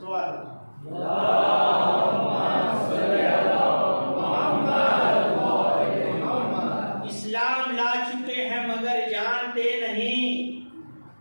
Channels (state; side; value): inverted; both; correlation -1.00